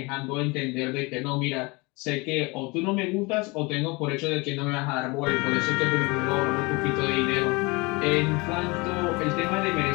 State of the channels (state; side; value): quieter; right; 26.2 dB